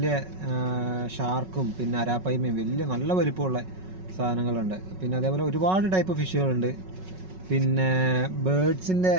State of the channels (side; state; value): left; late; 5.4 ms